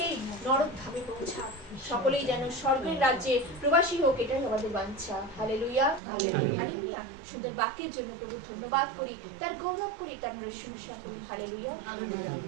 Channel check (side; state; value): left; drops out; at 6.0 s